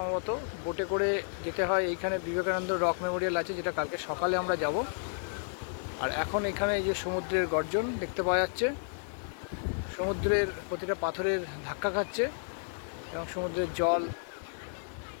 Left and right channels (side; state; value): right; silent; digital silence